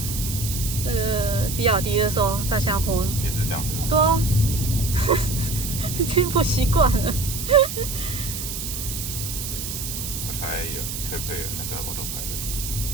比亚迪的时候，在下坡也是这样子。对啊，已经不习惯了。我猜可不可以那个 autopilot？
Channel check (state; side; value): noise; right; hiss, 6 dB below the sound